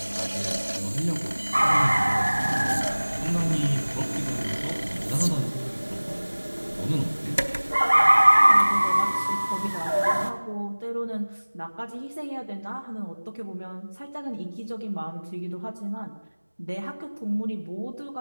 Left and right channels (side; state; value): both; inverted; correlation -1.00